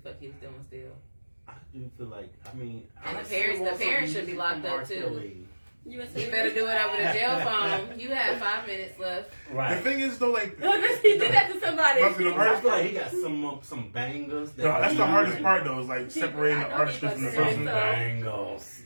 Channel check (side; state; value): both; inverted; correlation -1.00